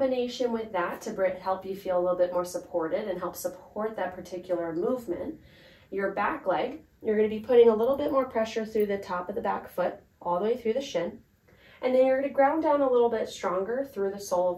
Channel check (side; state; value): both; identical; correlation 1.00